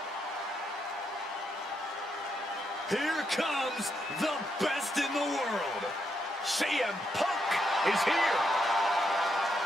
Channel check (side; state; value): both; normal; correlation 0.79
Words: Here comes the best in the world. CM Punk is here.